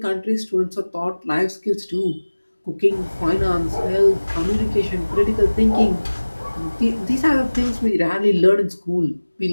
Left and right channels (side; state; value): both; inverted; correlation -1.00